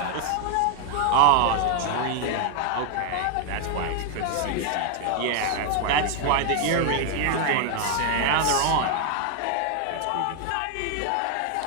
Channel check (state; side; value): different; both; correlation 0.00